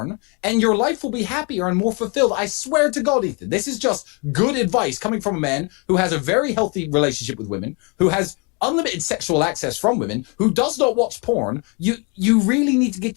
and your life will be happier and more fulfilled. I swear to God, Ethan, this is just good advice coming from a man who has a very healthy relationship with women, who has unlimited sexual access from women, who does not watch porn. You really need to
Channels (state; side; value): quieter; right; 33.0 dB